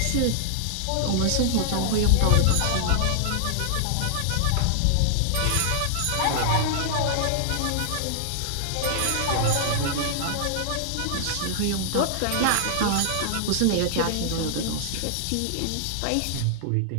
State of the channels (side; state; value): both; different; correlation -0.01